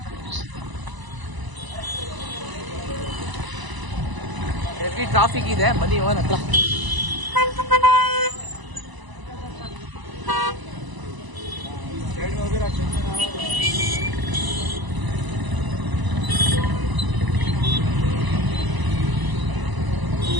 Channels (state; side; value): late; left; 1.0 ms